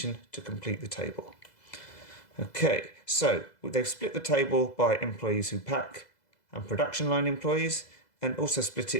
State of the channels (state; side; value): late; right; 2.0 ms